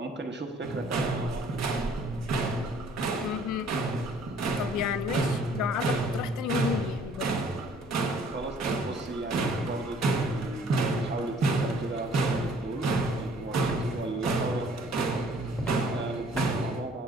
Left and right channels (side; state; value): both; normal; correlation 0.57